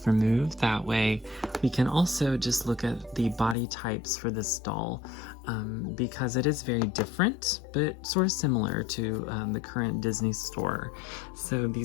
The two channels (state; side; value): drops out; right; at 3.6 s